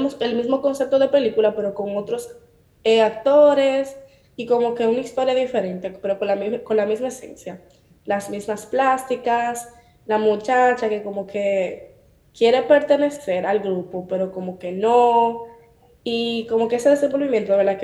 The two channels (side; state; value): both; identical; correlation 1.00